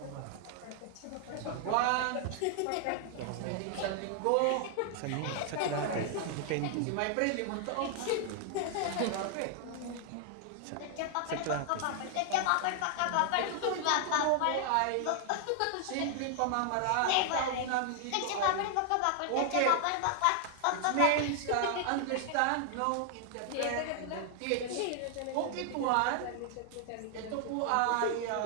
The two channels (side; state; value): both; different; correlation 0.00